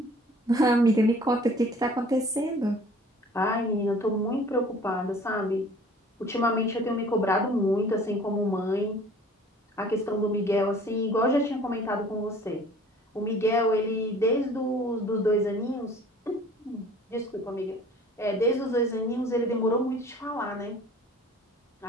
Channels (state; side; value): normal; both; correlation 0.50